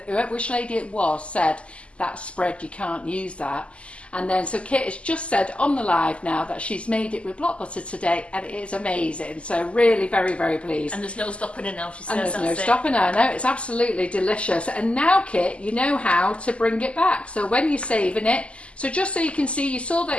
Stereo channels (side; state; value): right; late; 0.057 ms